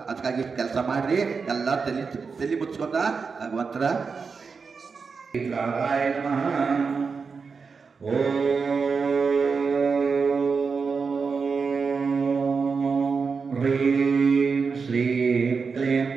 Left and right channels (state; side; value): quieter; left; 5.1 dB